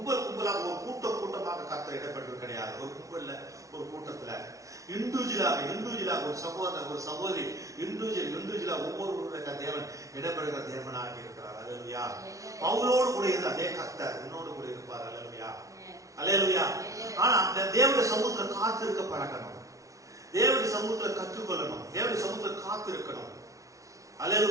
ஒரு கூட்டமாக கர்த்தர் இடப்பட்டு கிடையாது. ஒரு கும்பல்ல ஒரு கூட்டத்துல இண்டிவிஜுவலாக ஒரு சகோதரன் ஒரு சகோதரி இண்டிவிஜுவலா ஒவ்வொருவருடைய தேவன் இடம்பெறுகிற தேவனாக இருக்கிறார். அல்லேலூயா. பவுலோடு கூட இருந்த அதே கர்த்தர் உன்னோடு கூட இருப்பார். அல்லேலூயா, அல்லேலூயா. ஆனா அந்த தேவனுடைய சமூகத்துல காத்திருக்க பழகணும். தேவனுடைய சமூகத்துல கற்றுக்கொள்ளணும். தேவனுடைய சமூகத்துல காத்திருக்கணும்.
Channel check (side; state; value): left; late; 0.16 ms